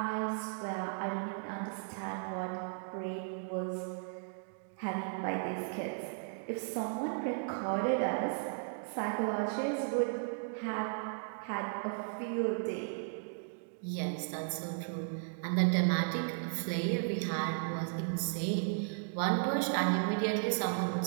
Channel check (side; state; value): left; silent; digital silence